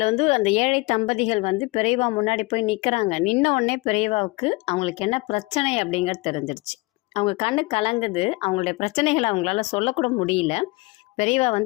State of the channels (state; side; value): quieter; right; 24.3 dB